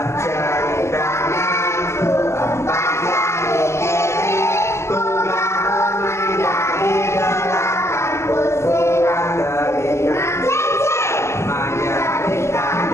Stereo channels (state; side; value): late; right; 0.13 ms